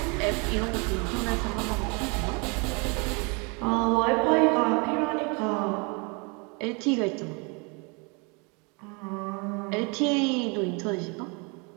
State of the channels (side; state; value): left; quieter; 31.5 dB